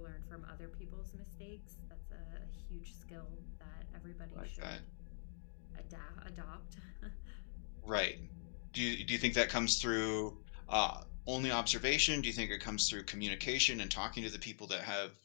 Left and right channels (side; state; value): right; silent; digital silence